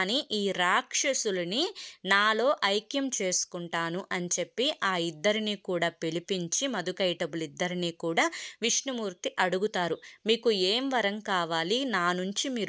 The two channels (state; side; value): identical; both; correlation 1.00